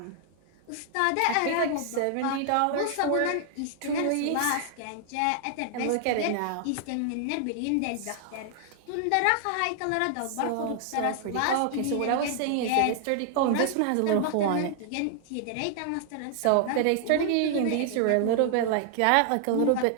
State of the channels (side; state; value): both; different; correlation 0.00